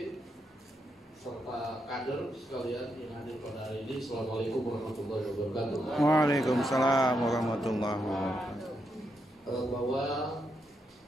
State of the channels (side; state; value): both; normal; correlation 0.82